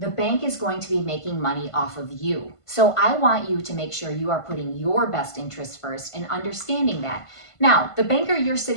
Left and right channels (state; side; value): late; right; 1.5 ms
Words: is going to be making money off of you. So I want you to make sure you are putting your best interests first and understanding that. Now, the banker you're